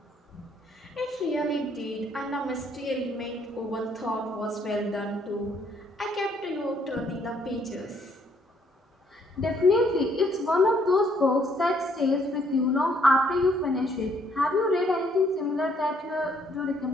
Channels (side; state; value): both; normal; correlation 0.67